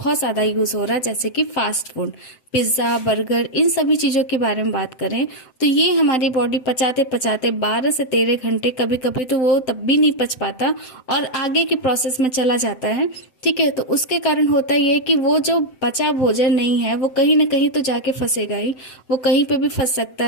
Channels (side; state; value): right; late; 7.8 ms